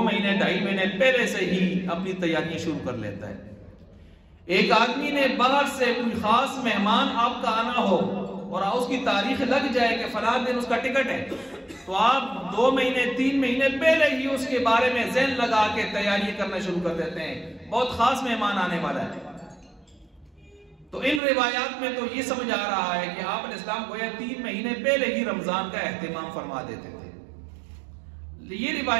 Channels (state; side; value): drops out; left; at 21.2 s